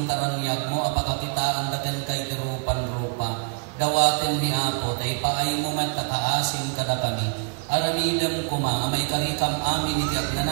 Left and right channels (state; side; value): quieter; left; 37.6 dB